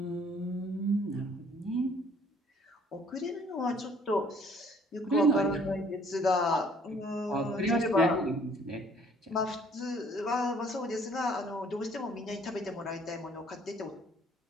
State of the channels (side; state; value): both; normal; correlation 0.59